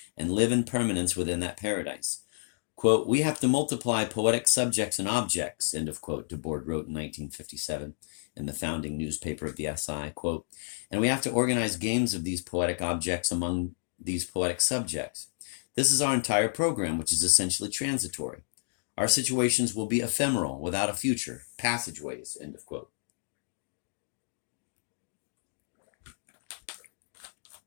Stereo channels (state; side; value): silent; right; digital silence